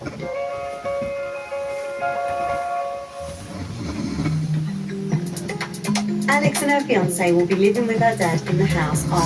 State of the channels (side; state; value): both; identical; correlation 1.00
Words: Alex and her fiance will be living with her dad in the house